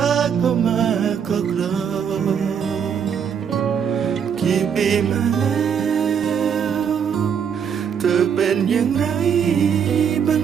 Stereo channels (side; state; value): left; quieter; 7.5 dB